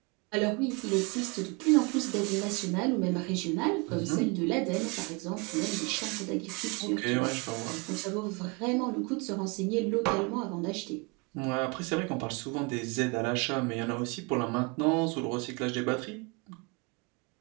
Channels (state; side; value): quieter; left; 29.7 dB